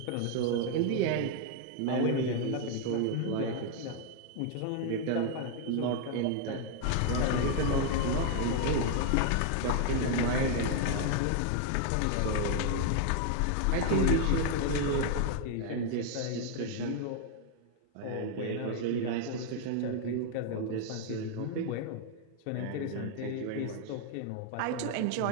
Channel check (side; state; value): both; different; correlation 0.00